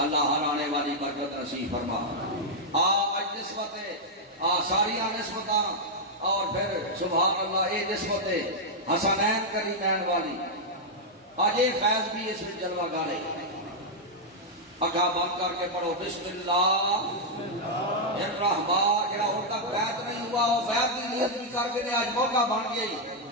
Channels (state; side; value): normal; both; correlation -0.03